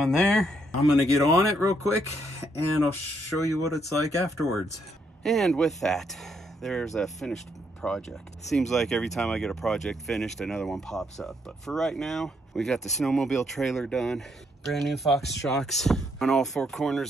there. I'm gonna get on it real quick and I'll show you what it's like afterwards. And with that, there's a finished project. Seems like every time I get a project finished, another one pops up. But for right now, we got the snowmobile trailer done. Brand new Fox shocks on all four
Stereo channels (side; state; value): both; normal; correlation 0.74